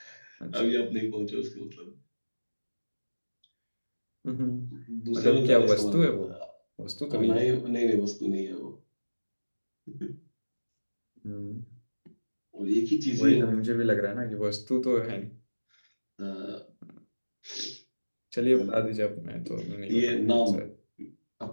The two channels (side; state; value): both; inverted; correlation -1.00